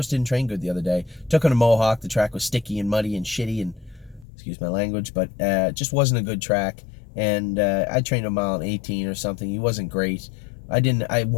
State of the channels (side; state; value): right; drops out; at 4.2 s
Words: didn't train good the other day. Took on a Mohawk. The track was sticky and muddy and shitty, and excuse my language, but just wasn't a good track. And I trained a mile in 18 or something. He wasn't great. I